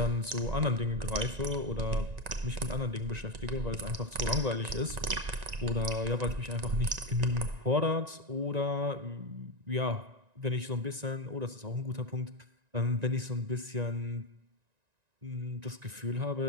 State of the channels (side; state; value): left; late; 1.9 ms